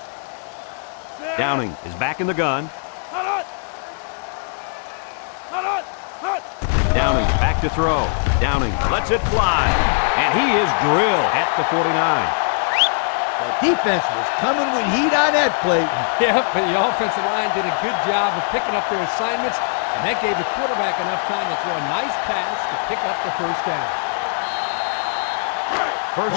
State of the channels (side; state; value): right; silent; digital silence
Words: Downing is back in the gun. Downing back to throw. Downing lets it fly. And he is drilled at the 49. The defense was coming with heat on that play. Yeah, but the offensive line did a good job of picking up their assignments, and that gave the quarterback enough time to throw a nice pass to pick up the first down.